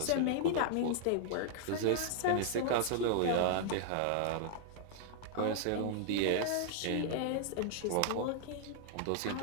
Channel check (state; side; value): different; both; correlation -0.01